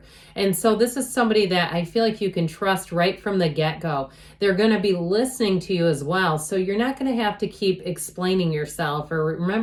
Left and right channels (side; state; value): both; identical; correlation 1.00